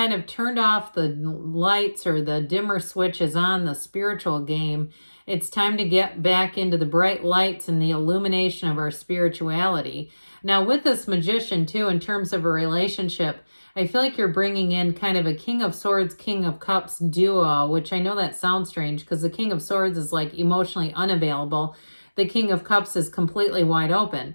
of turned off the lights or the dimmer switches on the spiritual game, it's time to get back into the bright lights and the illumination of our spirituality. Now with this Magician too, in terms of a relationship, I feel like you're bringing in kind of a King of Swords, King of Cups duo, which I know that sounds strange because the King of Swords is like emotionally unavailable. The King of Cups is completely wide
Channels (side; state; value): both; inverted; correlation -1.00